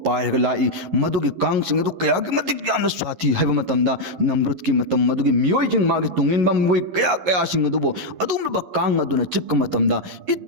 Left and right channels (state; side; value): late; left; 11 ms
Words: पायरगा लाई मदुगी कांगसिंग अदु कयागी मतिक यामना स्वाति हाइबा मतमदा नमरुद की मतम मदुगी मियोइजिंग मागी तुंगिनबा मुई कया सिंग अदुबो अदुमलबा कांग अदुना चिक्क मतमदा